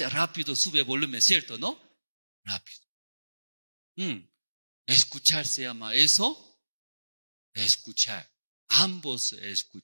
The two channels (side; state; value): both; inverted; correlation -1.00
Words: Rápido sube volumen, ¿cierto? ¿No? Rápido. Escuchar se llama eso. Escuchar. Ambos